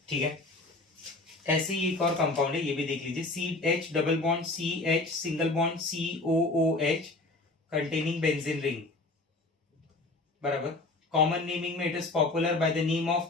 ठीक है। ऐसे ही एक और कंपाउंड है, ये भी देख लीजिए, CH double bond CH single bond COOH containing benzene ring, बराबर। कॉमन नेमिंग में it is popular by the name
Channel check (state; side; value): quieter; right; 3.1 dB